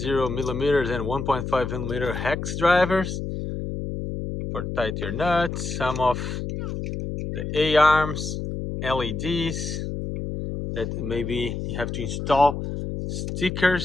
millimeters and 1.5 millimeter hex drivers for tight your nuts. Some of the A-arms, LEDs that maybe you have to install,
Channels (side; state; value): left; noise; hum, 4 dB below the sound